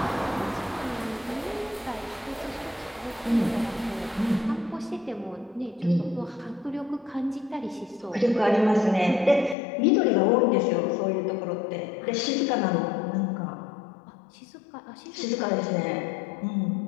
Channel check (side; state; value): right; drops out; at 9.6 s